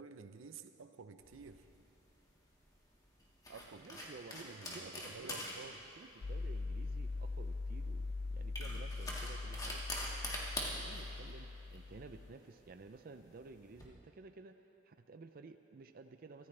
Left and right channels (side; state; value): both; normal; correlation 0.57